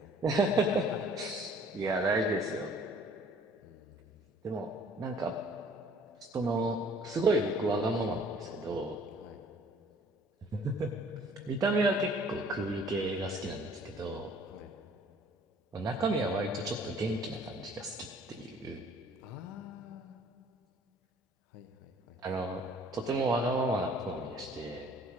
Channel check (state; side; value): normal; both; correlation 0.55